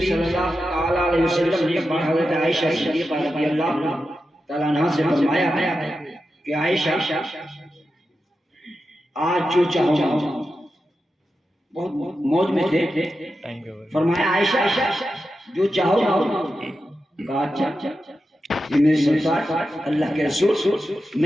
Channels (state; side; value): normal; both; correlation 0.90